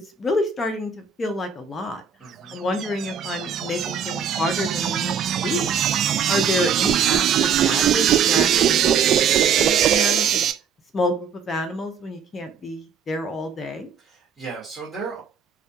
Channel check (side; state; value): left; quieter; 6.2 dB